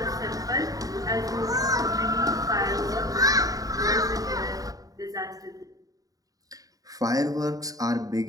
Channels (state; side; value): late; left; 0.17 ms